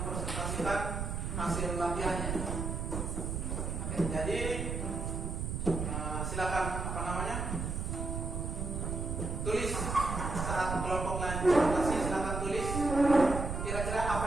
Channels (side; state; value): right; noise; rumble, 3 dB below the sound